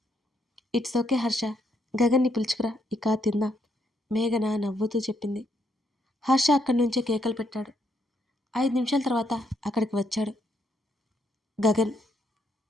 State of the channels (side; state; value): both; normal; correlation 0.75